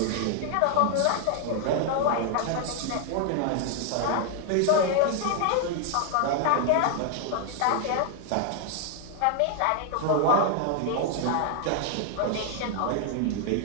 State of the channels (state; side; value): different; both; correlation 0.00